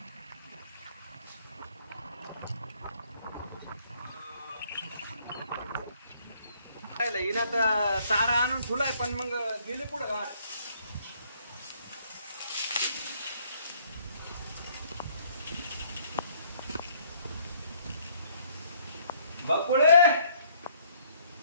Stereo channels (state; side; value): inverted; both; correlation -0.64